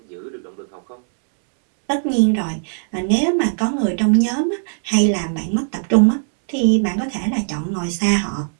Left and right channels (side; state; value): left; silent; digital silence